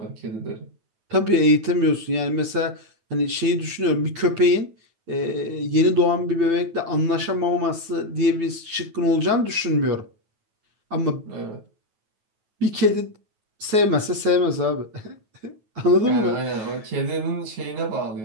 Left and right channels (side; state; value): left; late; 9.2 ms